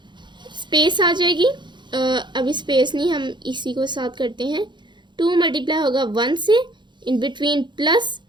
स्पेस आ जाएगी। अभी स्पेस नहीं, हम इसी को साथ करते हैं। 2 मल्टीप्लाई होगा 1 से, इन बिटवीन प्लस,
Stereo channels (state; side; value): late; left; 0.22 ms